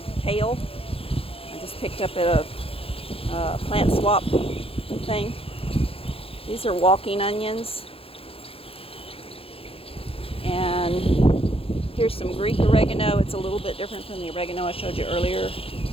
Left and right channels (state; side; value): late; right; 0.27 ms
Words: kale. I just picked up at a plant swap thing. These are walking onions. And here's some Greek oregano. It's a little bit different from the oregano I showed you earlier.